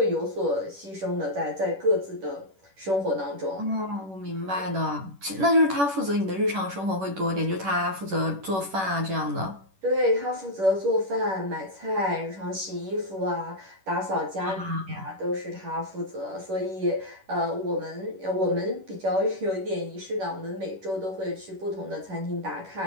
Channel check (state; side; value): late; left; 10 ms